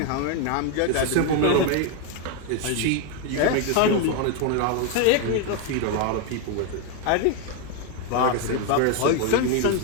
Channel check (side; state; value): both; different; correlation 0.01